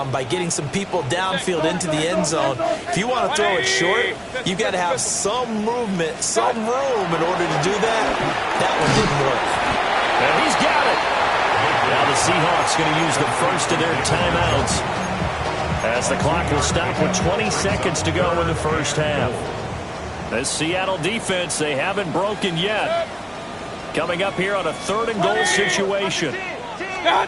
by getting some people downfield into the end zone. If you want to throw it short, you've got to have some movement, some room in order to do that. That one didn't work. And he's got it. Now the Seahawks going to use the first of their timeouts, as the clock will stop with 20 seconds to go in the first half. This Seattle defense, they haven't broken yet. Coming up here on a 3rd and goal situation.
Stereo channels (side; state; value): both; identical; correlation 1.00